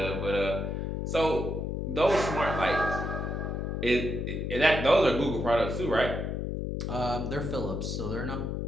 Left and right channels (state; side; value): noise; left; hum, 2 dB below the sound